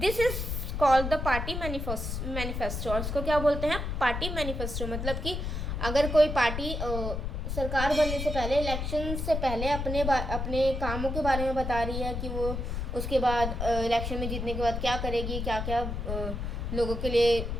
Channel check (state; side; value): noise; left; rumble, 3 dB below the sound